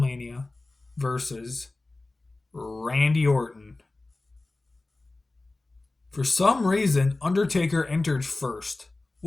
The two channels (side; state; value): right; quieter; 3.1 dB